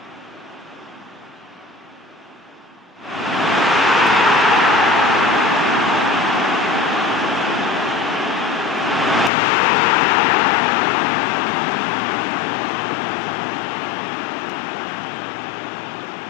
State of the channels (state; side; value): drops out; right; at 9.3 s